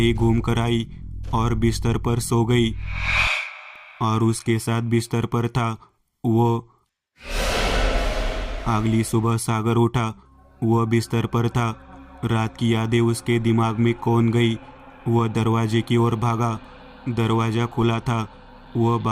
घूम कर आई और बिस्तर पर सो गई। और उसके साथ बिस्तर पर था वो। अगली सुबह सागर उठा। वह बिस्तर पर था। रात की यादें उसके दिमाग में कौन गई। वह दरवाजे की ओर भागा। दरवाजा खुला था। वह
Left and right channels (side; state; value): both; identical; correlation 1.00